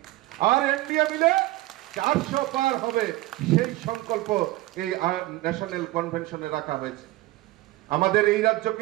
আর এনডিএ মিলে 400 পার হবে। সেই সংকল্প এই ন্যাশনাল কনভেনশনে রাখা হয়েছে। আমাদের এই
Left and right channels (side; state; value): left; quieter; 17.9 dB